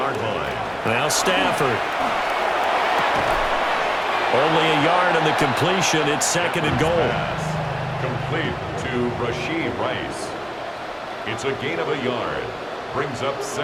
line. Now Stafford. Only a yard on the completion. It's 2nd and goal. Complete to Rashee Rice. It's a gain of a yard. Brings up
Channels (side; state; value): both; identical; correlation 1.00